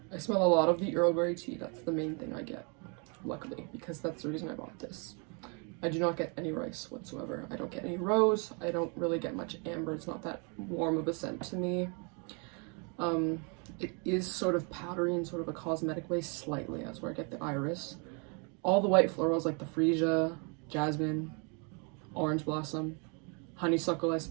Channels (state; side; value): quieter; left; 35.3 dB